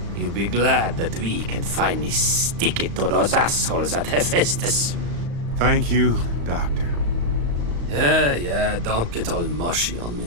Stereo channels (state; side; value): late; left; 35 ms